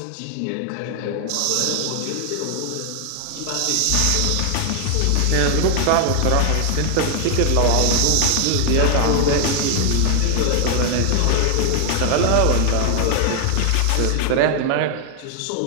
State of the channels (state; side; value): different; both; correlation 0.00